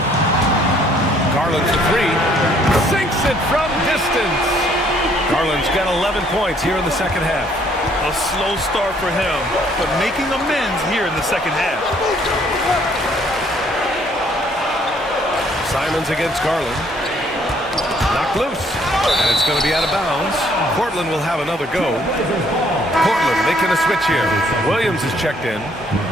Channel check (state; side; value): normal; both; correlation 0.64